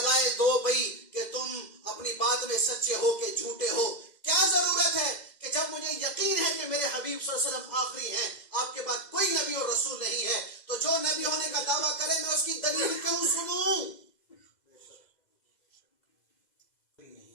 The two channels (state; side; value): late; right; 2.0 ms